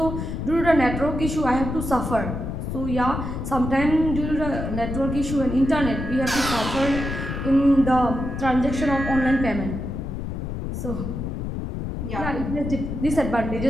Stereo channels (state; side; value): noise; left; rumble, 4 dB below the sound